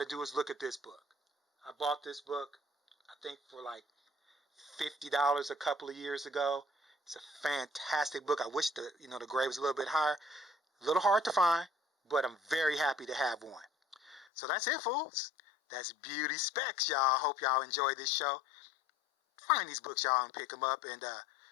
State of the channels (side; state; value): right; drops out; at 14.2 s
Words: do is look at this book. I bought this book, I think, for like $50 a couple of years ago. It's a fantastic book. I wish the grade was a little bit higher. A little hard to find, but I'm very happy to have one. So that's it, fools. That's Beauty Specs, y'all. Hope y'all enjoy this show. Find these books, y'all, and pick them up. And